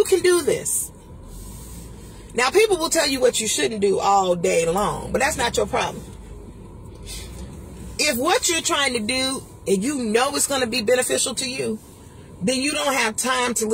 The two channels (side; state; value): both; identical; correlation 1.00